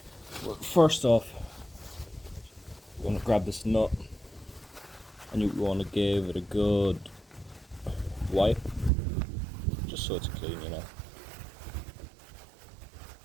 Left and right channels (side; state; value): left; drops out; at 8.9 s